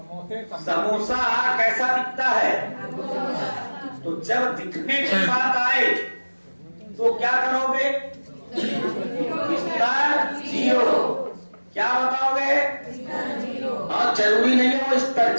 समोसा कैसा दिखता है? तो जब दिखने की बात आए तो क्या करोगे? स्तर जीरो। क्या बताओगे? हाँ, जरूरी नहीं है वो स्तर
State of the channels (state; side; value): inverted; both; correlation -1.00